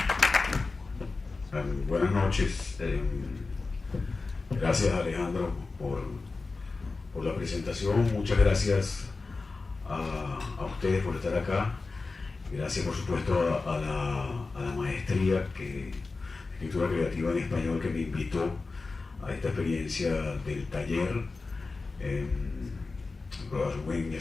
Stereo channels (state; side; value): quieter; right; 3.9 dB